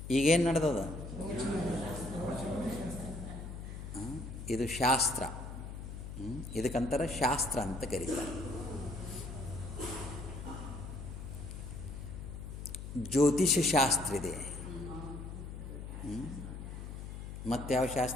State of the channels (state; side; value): noise; left; hum, 9 dB below the sound